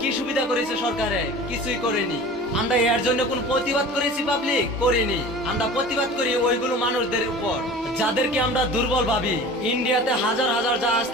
কি সুবিধা করেছে সরকারে? কিছুই করেনি। আমরা এর জন্য কোন প্রতিবাদ করেছি? পাবলিক করিনি। আমরা প্রতিবাদ করি ওইগুলো মানুষদের উপর যাদেরকে আমরা দুর্বল ভাবি। ইন্ডিয়াতে হাজার হাজার জাহাজ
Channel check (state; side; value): normal; both; correlation 0.39